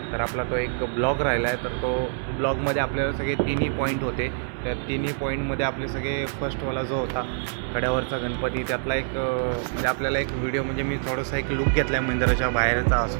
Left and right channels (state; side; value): silent; left; digital silence